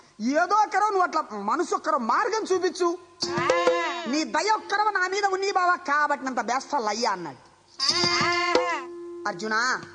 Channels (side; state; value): both; identical; correlation 1.00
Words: ఏదో ఒక్కరో నువ్వు అట్లా మనసు ఒక్కరో మార్గం చూపించు, నీ దయ ఒక్కరో నా మీద ఉంది బాబా, కాబట్టి నంత బేస్తాలు అయ్యా అన్నాడు. అర్జున